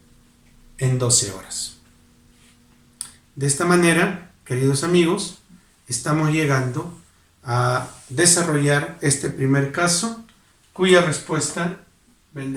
en 12 horas. De esta manera, queridos amigos, estamos llegando a desarrollar este primer caso, cuya respuesta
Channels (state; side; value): identical; both; correlation 1.00